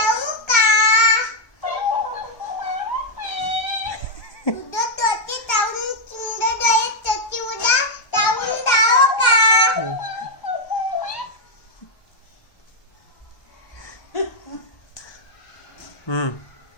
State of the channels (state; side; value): late; right; 1.3 ms